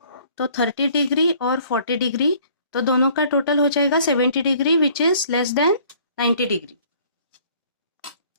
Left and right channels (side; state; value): both; inverted; correlation -0.56